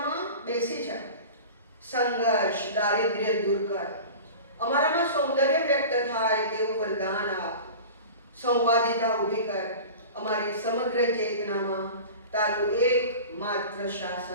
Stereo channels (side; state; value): both; inverted; correlation -0.36